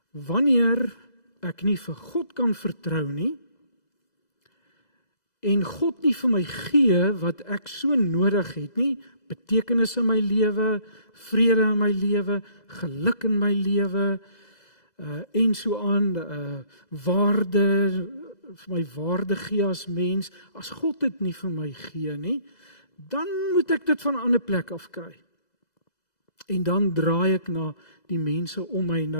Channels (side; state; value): right; late; 2.0 ms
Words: wanneer ek nie vir God kan vertrou nie en God nie vir my gee wat ek so nodig het nie, betekenis in my lewe, vrede in my lewe, geluk in my lewe, en so aan, waarde, vir my waarde gee as mens, as God dit nie vir my gee nie, dan moet ek dit van 'n ander plek afkry. En dan draai ek na die mense om my,